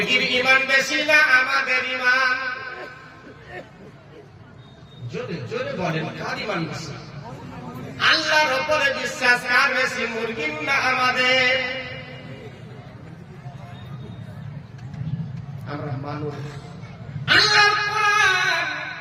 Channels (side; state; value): both; identical; correlation 1.00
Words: ঈমান বেশি না আমাদের ঈমান? জোরে জোরে বলেন, কার ঈমান বেশি? আল্লাহর উপরে বিশ্বাস কার বেশি, মুরগির না আমাদের? আমরা মানুষ। আল্লাহর কোরআন